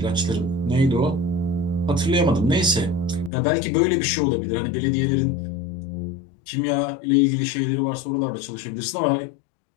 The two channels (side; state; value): right; drops out; at 3.3 s